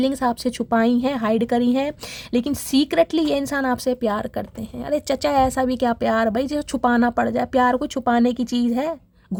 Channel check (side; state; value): both; identical; correlation 1.00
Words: आपसे छुपाई हैं, हाइड करी हैं, लेकिन सीक्रेटली ये इंसान आपसे प्यार करते हैं। अरे चचा ऐसा भी क्या प्यार भाई जो छुपाना पड़ जाए। प्यार को छुपाने की चीज़ है,